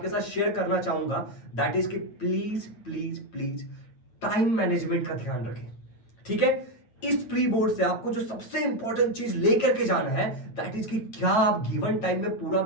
साथ शेयर करना चाहूंगा दैट इज कि please please please time management का ध्यान रखें। ठीक है, इस प्री बोर्ड से आपको जो सबसे इंपॉर्टेंट चीज लेकर के जाना है दैट इज कि क्या आप गिवन टाइम में पूरा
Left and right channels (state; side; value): late; right; 9.0 ms